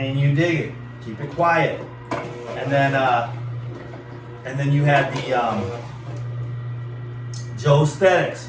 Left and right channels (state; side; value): identical; both; correlation 1.00